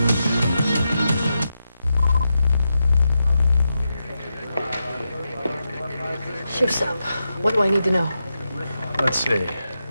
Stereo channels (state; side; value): inverted; both; correlation -0.87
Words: Shift's up. What do I need to know? Let's see.